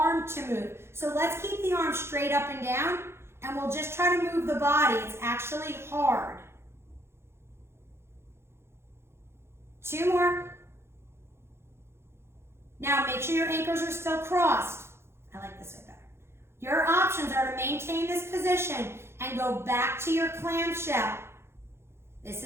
to move. So let's keep the arm straight up and down, and we'll just try to move the body. It's actually hard. 2 more. Now make sure your ankles are still crossed. I like this way better. Your options are to maintain this position and go back to your clamshell. This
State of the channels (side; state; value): left; late; 0.12 ms